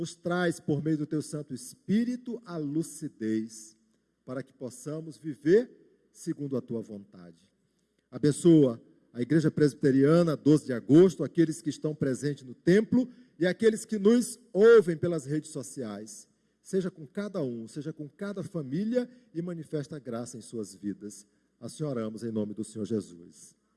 traz, por meio do Teu Santo Espírito, a lucidez, para que possamos viver segundo a Tua vontade. Abençoa a Igreja Presbiteriana, 12 de agosto, aqueles que estão presentes no templo e aqueles que nos ouvem pelas redes sociais. Seja com cada um, seja com cada família e manifesta a graça em suas vidas. Assim oramos em nome do Senhor Jesus.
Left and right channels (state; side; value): identical; both; correlation 1.00